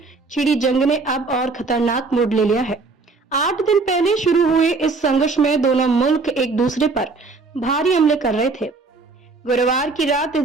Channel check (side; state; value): left; quieter; 4.0 dB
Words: छिड़ी जंग ने अब और खतरनाक मोड़ ले लिया है। 8 दिन पहले शुरू हुए इस संघर्ष में दोनों मुल्क एक दूसरे पर भारी हमले कर रहे थे। गुरुवार की रात